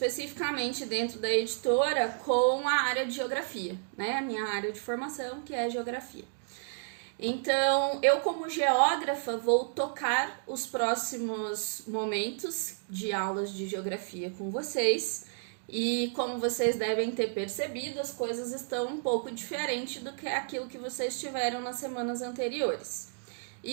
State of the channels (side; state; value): left; silent; digital silence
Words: dentro da editora com a área de geografia, né? A minha área de formação, que é geografia. Então, eu como geógrafa vou tocar os próximos momentos de aulas de geografia com vocês. E como vocês devem ter percebido, as coisas estão um pouco diferentes do que aquilo que vocês tiveram nas semanas anteriores.